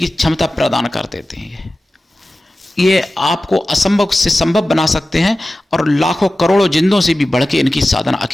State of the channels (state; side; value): normal; both; correlation 0.95